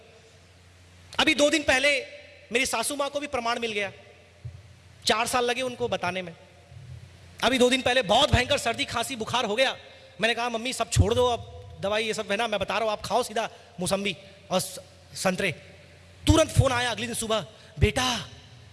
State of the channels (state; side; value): identical; both; correlation 1.00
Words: अभी 2 दिन पहले मेरी सासू मां को भी प्रमाण मिल गया, 4 साल लगे उनको बताने में। अभी 2 दिन पहले बहुत भयंकर सर्दी खांसी बुखार हो गया। मैंने कहा मम्मी सब छोड़ दो, अब दवाई ये सब है ना, मैं बता रहा हूं, आप खाओ सीधा मौसम्बी और संतरे। तुरंत फोन आया अगले दिन सुबह, बेटा